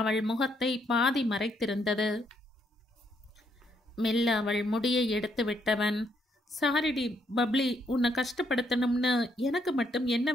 முகத்தை பாதி மறைத்திருந்தது. மெல்ல அவள் முடியை எடுத்து விட்டவன், சாரிடி பப்ளி, உன்னை கஷ்டப்படுத்தணும்னு எனக்கு மட்டும் என்ன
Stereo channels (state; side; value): normal; both; correlation 0.73